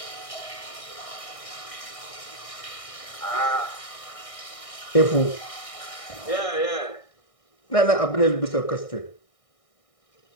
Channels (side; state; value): right; late; 1.6 ms